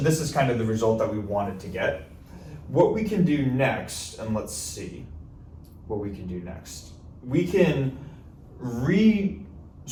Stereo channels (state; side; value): identical; both; correlation 1.00